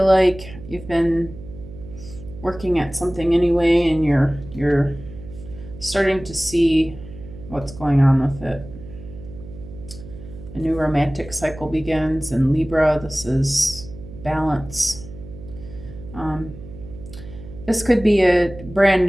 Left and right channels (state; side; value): noise; right; hum, 15 dB below the sound